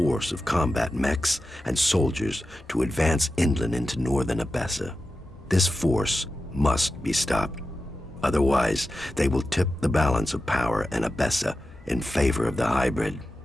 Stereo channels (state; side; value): normal; both; correlation 0.92